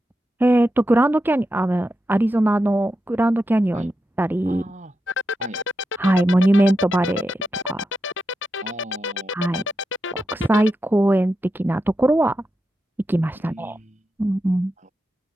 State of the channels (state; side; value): normal; both; correlation 0.88